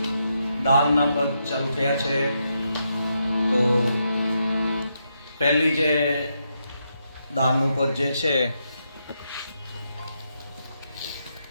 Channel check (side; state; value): both; inverted; correlation -0.81